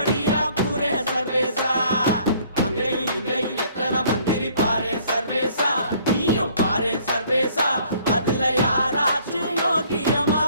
கூறேன் சர்வேசா. அங்கேயும் இங்கேயும் எத்தனை மந்திரி பாரேன் சர்வேசா, நீயும் பாரேன் சர்வேசா, அதுல யாராச்சும் யோகியமா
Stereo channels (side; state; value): both; inverted; correlation -0.59